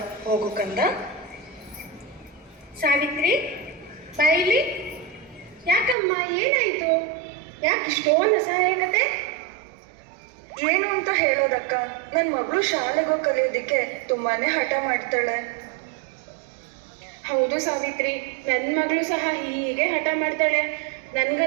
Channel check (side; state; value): left; drops out; at 6.0 s